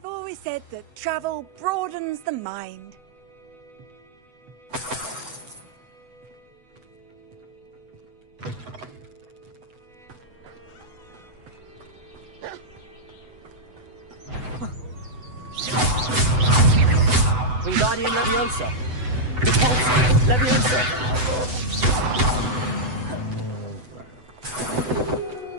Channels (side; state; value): left; late; 8.0 ms